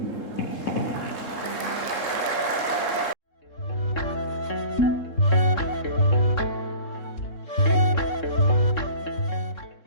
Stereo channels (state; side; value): late; right; 3.7 ms